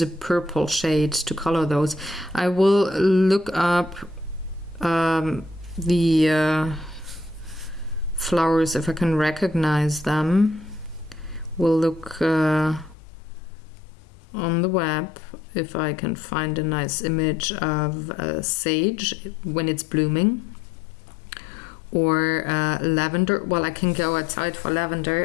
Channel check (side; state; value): right; drops out; at 13.0 s